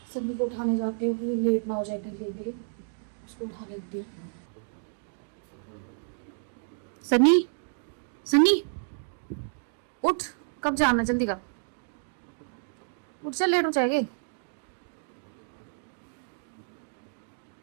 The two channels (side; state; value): left; silent; digital silence